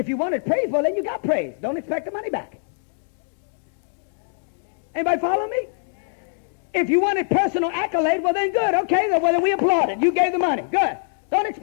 you wanted praise, well, then you got praise. Don't expect the money back. Anybody follow me? If you wanted personal accolade, well, then good. Okay, well, then we applaud it. You gave the money. Good. Don't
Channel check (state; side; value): silent; right; 63 dB below the other